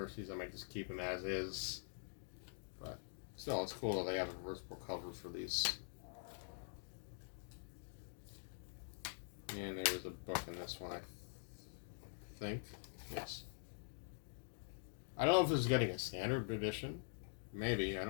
these. I might just keep them as is. But still, it's cool that they have a reversible cover for these. And there is a book in this one, I think. Yes. I don't know if this is getting a standard edition. Maybe. I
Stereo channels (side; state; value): right; silent; digital silence